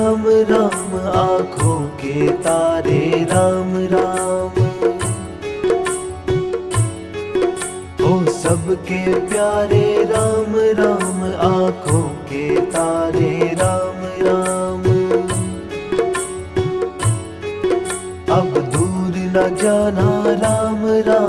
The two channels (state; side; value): identical; both; correlation 1.00